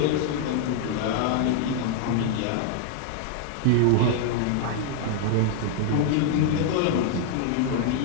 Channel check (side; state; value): both; different; correlation 0.00